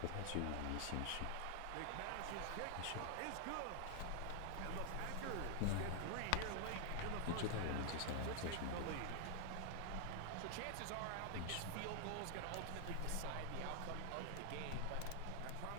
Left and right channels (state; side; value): different; both; correlation 0.00